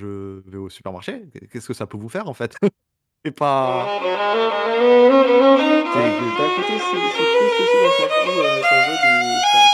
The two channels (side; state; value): both; identical; correlation 1.00